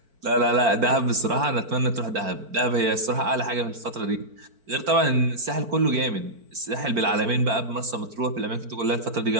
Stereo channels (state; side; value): late; left; 4.5 ms